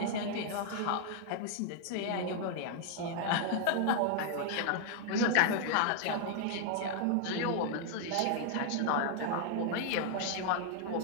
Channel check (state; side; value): different; both; correlation 0.00